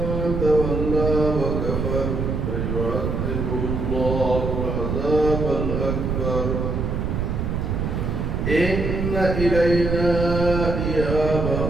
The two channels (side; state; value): right; noise; rumble, 1 dB below the sound